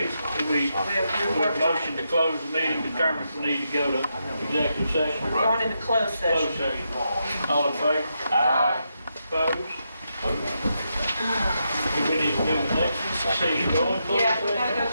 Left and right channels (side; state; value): both; inverted; correlation -0.83